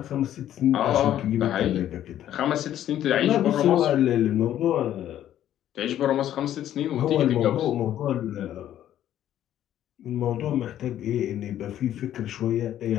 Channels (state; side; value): quieter; right; 11.7 dB